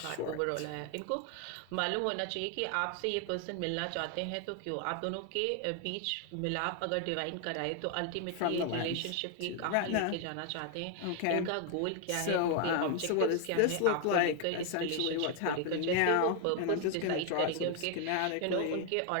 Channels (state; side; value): different; both; correlation 0.00